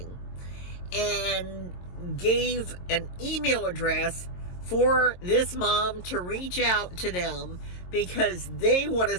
and gave an email address for this mom to reach out to them because they want to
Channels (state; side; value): late; right; 22 ms